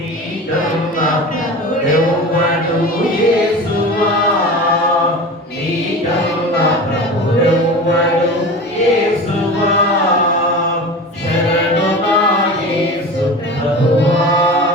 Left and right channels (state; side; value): normal; both; correlation 0.32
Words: ప్రభువెవ్వడు యేసువా, నీకన్నా ప్రభువెవ్వడు యేసువా, శరణు నా యేసు ప్రభువా,